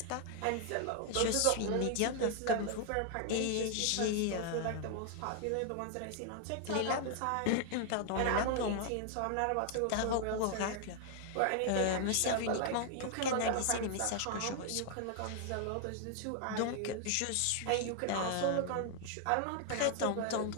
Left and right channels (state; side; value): different; both; correlation 0.00